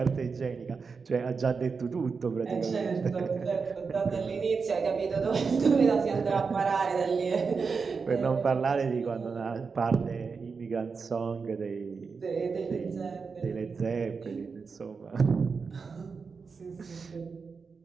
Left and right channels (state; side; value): quieter; left; 5.1 dB